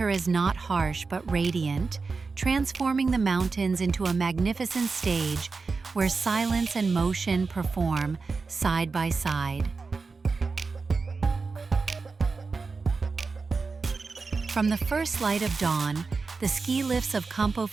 is not harsh but radiant, transforming the mountains into a magnificent stage where silence and motion perform side by side. From the first light of dawn, the ski lifts of Campo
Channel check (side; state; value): left; quieter; 4.4 dB